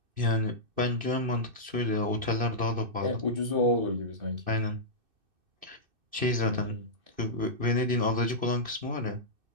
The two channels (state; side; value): late; left; 2.6 ms